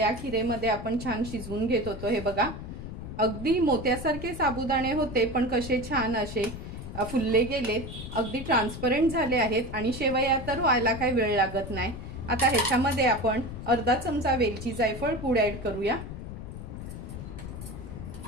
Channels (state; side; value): noise; left; rumble, 9 dB below the sound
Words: खीरेमध्ये आपण छान शिजवून घेत होतो। हे बघा अगदी मोत्यासारखे साबुदाणे होते पण कसे छान असे फुलले गेलेत, अगदी ट्रान्सपरंट झाले आहेत आणि शेवया तर व्हायला काही वेळ लागत नाही। आता ह्याच्यामध्ये आपण अर्धा चमचा वेलची जायफळ पूड ऍड करूया।